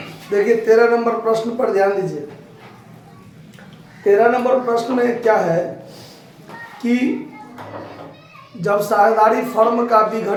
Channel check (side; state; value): both; identical; correlation 1.00